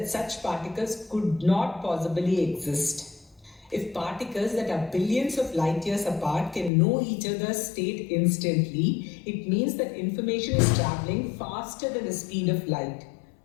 such particles could not possibly exist. If particles that are billions of light years apart can know each other's state instantly, it means that information is traveling faster than the speed of light.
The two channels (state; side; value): drops out; right; at 6.7 s